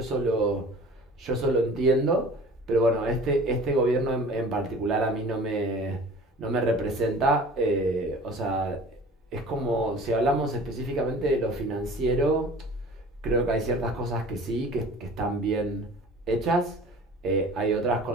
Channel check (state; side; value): normal; both; correlation 0.45